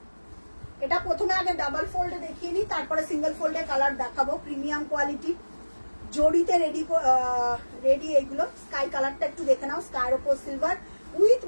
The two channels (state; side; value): inverted; both; correlation -1.00